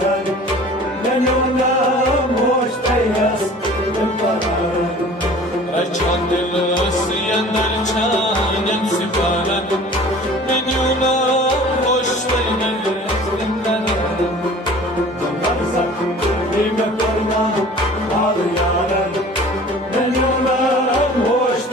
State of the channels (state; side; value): normal; both; correlation 0.45